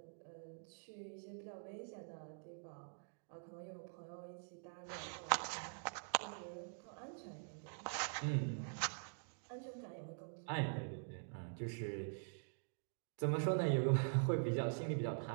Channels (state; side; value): silent; left; digital silence